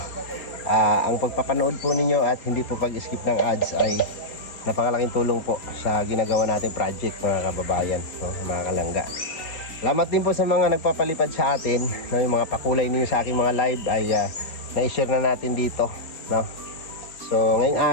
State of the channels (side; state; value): right; late; 4.3 ms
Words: Ang pagpapanood po ninyo at hindi po pag-skip ng ads ay napakalaking tulong po sa ginagawa natin project, mga kababayan, mga kalangga. Salamat din po sa mga nagpapalipad sa atin, yung mga pakulay ninyo sa aking mga live ay na-share na natin dito, no? So ngayong